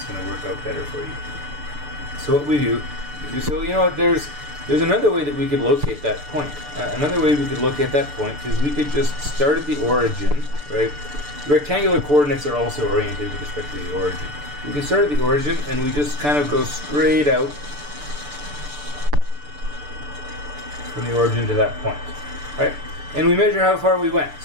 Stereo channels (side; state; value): left; late; 6.8 ms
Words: going to work out better for you. So what we do is, so you know what, there's another way that we could locate that point. Another way we could locate that point is we could just start at the origin, right? Rectangular coordinates are also oriented with respect to the origin. We can start at the origin and we just kind of go straight out from the origin to that point, right? And we measure how far we went.